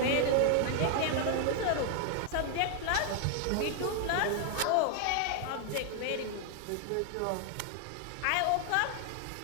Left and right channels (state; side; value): different; both; correlation 0.00